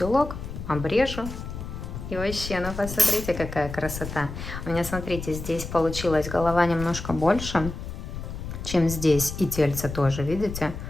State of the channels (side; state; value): left; noise; rumble, 8 dB below the sound